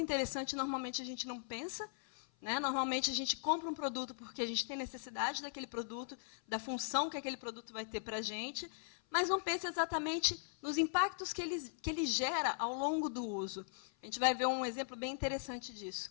interessante, normalmente a gente não pensa. Né? Normalmente, a gente compra um produto porque a gente tem necessidade daquele produto, da função que aquele produto vai ter para a gente, mas não pensa exatamente nos impactos que ele gera ao longo do uso. A gente vai ver um exemplo bem interessante disso.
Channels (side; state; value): right; silent; 52 dB below the other